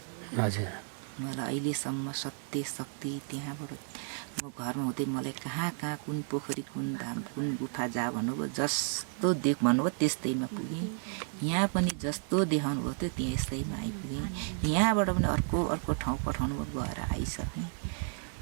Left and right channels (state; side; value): silent; left; 56 dB below the other